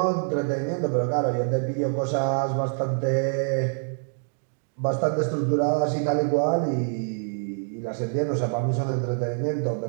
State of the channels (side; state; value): left; silent; digital silence